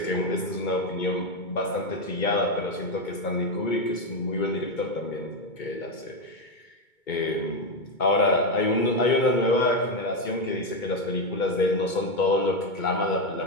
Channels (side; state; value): right; late; 2.2 ms